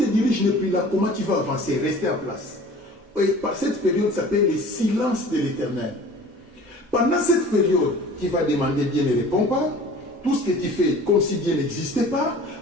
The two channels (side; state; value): both; normal; correlation 0.45